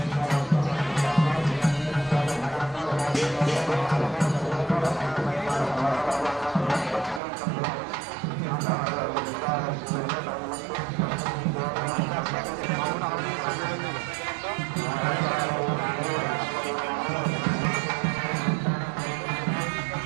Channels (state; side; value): drops out; left; at 7.2 s